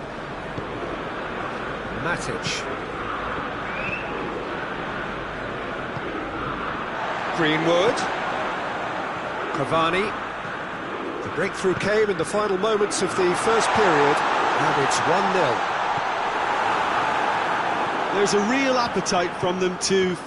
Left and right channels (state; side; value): identical; both; correlation 1.00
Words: Matic. Greenwood. Cavani. The breakthrough came in the final moments of the first period, and it's 1-0. There's a real appetite from them to